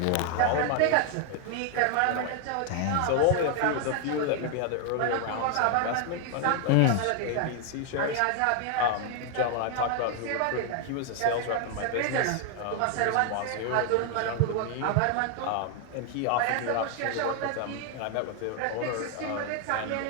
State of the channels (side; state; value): both; different; correlation 0.00